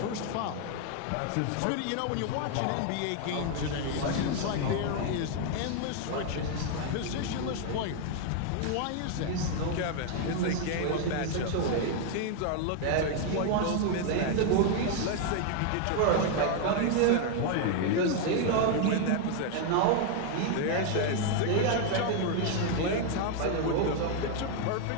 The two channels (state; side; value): different; both; correlation 0.00